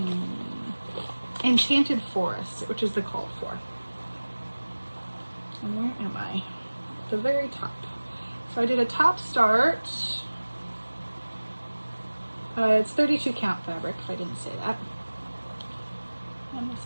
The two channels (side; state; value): both; inverted; correlation -1.00